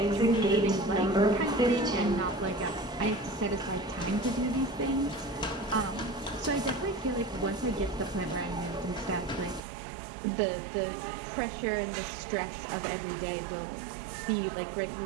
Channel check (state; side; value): drops out; left; at 9.6 s